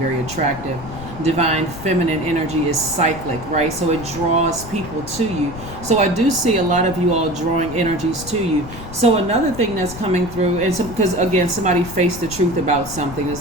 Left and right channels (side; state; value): left; noise; rumble, 13 dB below the sound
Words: attractive. divine feminine energy is cyclic, right? So it draws people to you. So I do see a lot of you all drawing energies to you. So another thing that's coming through, and because again, somebody faced the truth about something, it's